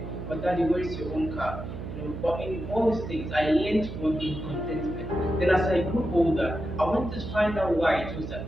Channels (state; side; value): noise; right; hum, 8 dB below the sound